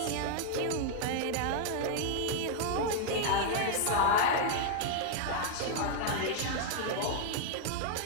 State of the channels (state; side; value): different; both; correlation 0.00